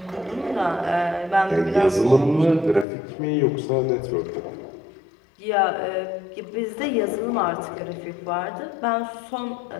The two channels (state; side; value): drops out; right; at 2.9 s